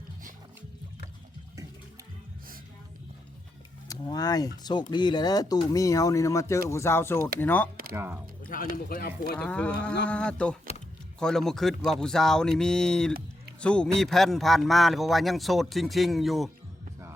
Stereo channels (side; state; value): both; normal; correlation 0.84